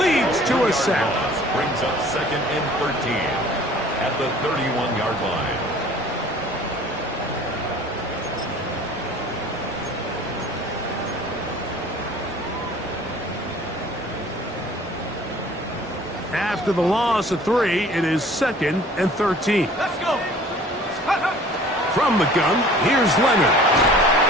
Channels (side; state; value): both; normal; correlation 0.49